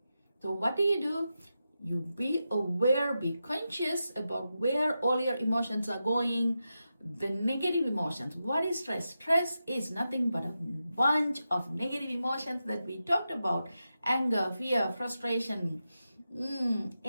So what do? You be aware, be conscious about where all your emotions are going. The negative emotions. What is stress? Stress is nothing but a bunch of negative emotions that we talked about. Anger, fear, frustration,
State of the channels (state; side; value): inverted; both; correlation -0.90